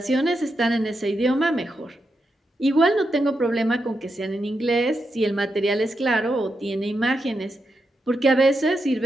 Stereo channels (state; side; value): normal; both; correlation 0.85